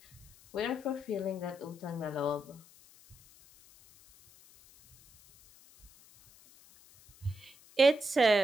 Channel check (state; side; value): noise; left; hiss, 25 dB below the sound